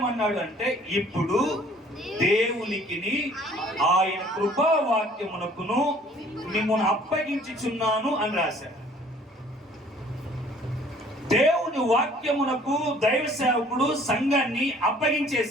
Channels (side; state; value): both; normal; correlation 0.55